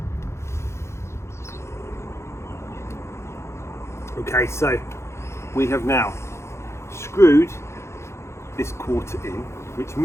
Okay, so we have now screwed this quarter in, which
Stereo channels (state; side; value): late; right; 0.13 ms